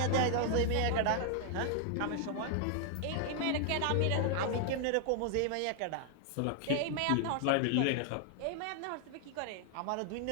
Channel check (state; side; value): different; both; correlation 0.00